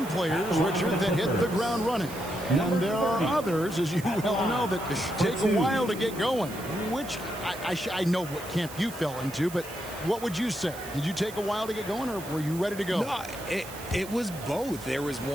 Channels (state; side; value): noise; right; hiss, 15 dB below the sound